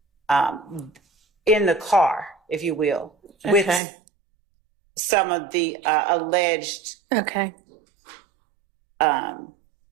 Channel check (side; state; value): left; drops out; at 3.8 s